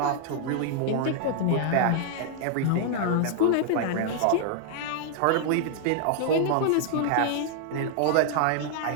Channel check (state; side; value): different; both; correlation -0.01